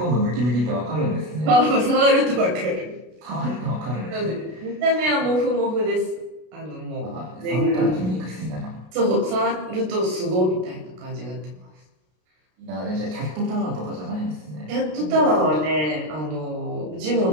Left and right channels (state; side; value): late; left; 33 ms